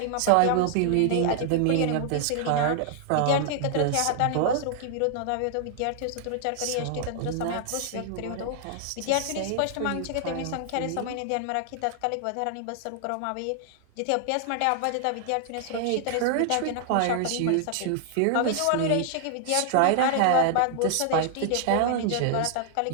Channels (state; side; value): different; both; correlation -0.01